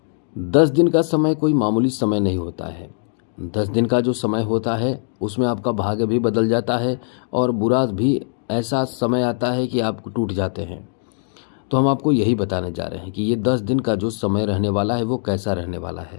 10 दिन का समय कोई मामूली समय नहीं होता है। 10 दिन का जो समय होता है उसमें आपका भाग्य भी बदल जाता है और बुरा भी ऐसा समय आता है कि आप टूट जाते हैं। तो हम आपको यही बताने जा रहे हैं कि ये 10 दिन का जो समय रहने वाला है वो कैसा रहने वाला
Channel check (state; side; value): silent; right; digital silence